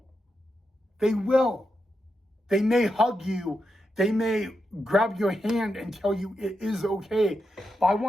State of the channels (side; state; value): both; normal; correlation 0.86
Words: They will. They may hug you. They may grab your hand and tell you it is okay. But I